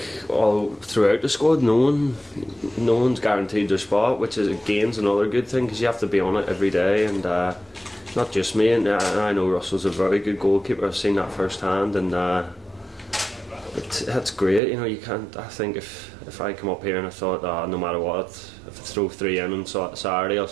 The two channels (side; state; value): left; drops out; at 14.6 s